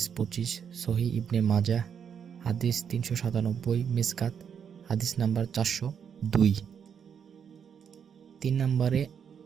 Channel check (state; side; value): quieter; left; 7.6 dB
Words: 25, সহিহ ইবনে মাজাহ হাদিস 397, মিসকাত হাদিস নাম্বার 402। 3 নম্বরে